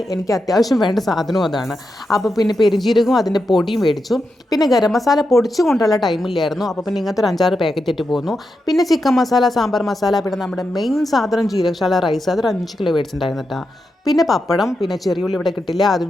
എനിക്ക് അത്യാവശ്യം വേണ്ട സാധനവും അതാണ്. അപ്പോൾ പിന്നെ പെരുംജീരകവും അതിൻ്റെ പൊടിയും മേടിച്ചു. പിന്നെ ഗരം മസാല പൊടിച്ചു കൊണ്ടുള്ള ടൈമില്ലായിരുന്നു, അപ്പോൾ പിന്നെ ഇങ്ങനത്തെ ഒരു 5-6 പാക്കറ്റ് ഇട്ട് പോന്നു. പിന്നെ ചിക്കൻ മസാല, സാമ്പാർ മസാല, പിന്നെ നമ്മുടെ മെയിൻ സാധനം ജീരകശാല റൈസ്, അതൊരു 5 കിലോ മേടിച്ചിട്ടുണ്ടായിരുന്നു കേട്ടോ. പിന്നെ പപ്പടം, പിന്നെ ചെറിയുള്ളി ഇവിടെ കിട്ടില്ല, അതും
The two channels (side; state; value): both; normal; correlation 0.87